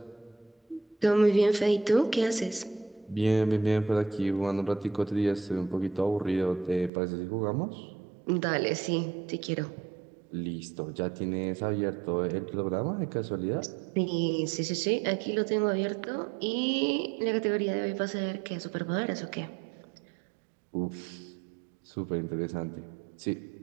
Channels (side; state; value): left; drops out; at 6.9 s